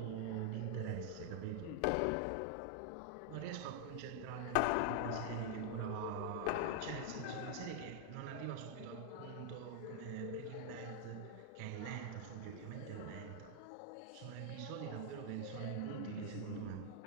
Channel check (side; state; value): both; different; correlation 0.00